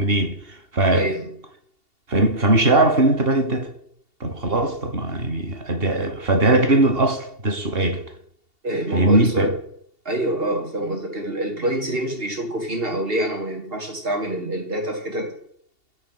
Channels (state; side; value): late; left; 2.8 ms